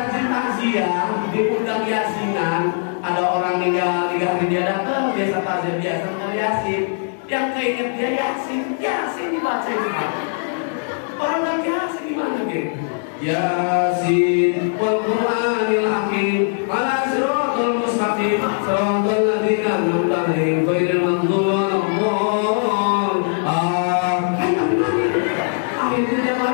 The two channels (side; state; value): right; silent; digital silence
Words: takziah, diundang yasinan, ada orang meninggal 3 hari dia datang, biasa takziah, biasa dengar yasin, yang keinget dia yasin dibaca itu. Orang lagi yasin gimana gitu? Yasin wal Qur'anil hakim ala siratal mustaqim siratal ladzina an'amta 'alaihim ghairil maghdubi 'alaihim. Akhirnya dia